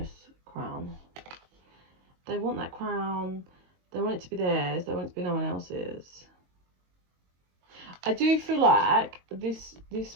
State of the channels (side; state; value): left; late; 22 ms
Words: crown. They want that crown. They want it to be theirs. They want it to be no one else's. I do feel like this